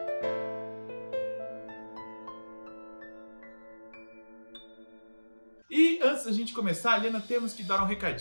E antes da gente começar, Helena, temos que dar um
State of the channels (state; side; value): inverted; both; correlation -1.00